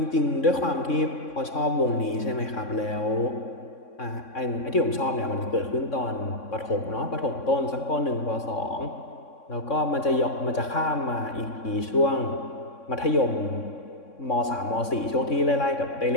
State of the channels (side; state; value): right; late; 3.6 ms